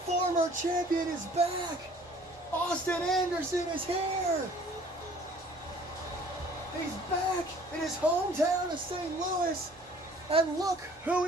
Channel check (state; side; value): normal; both; correlation 0.53